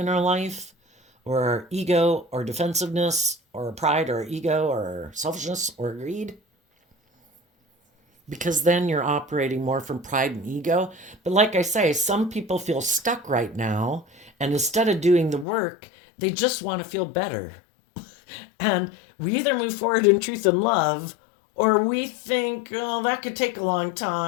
our life, or our ego or defensiveness or pride or ego or selfishness or greed, because then you're operating more from pride and ego. But like I say, some people feel stuck right now, and instead of doing the work, they just want to feel better. And we either move forward in truth and love, or we think, oh, that could take a long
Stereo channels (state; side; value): drops out; right; at 15.5 s